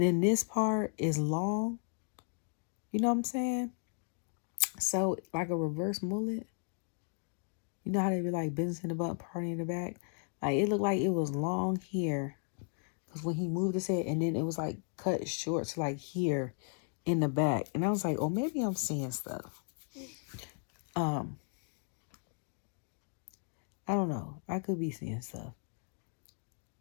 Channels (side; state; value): right; silent; 54 dB below the other